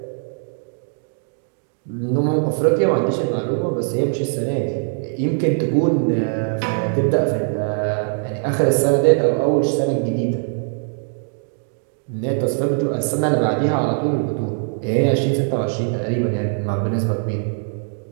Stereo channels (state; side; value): silent; left; 65 dB below the other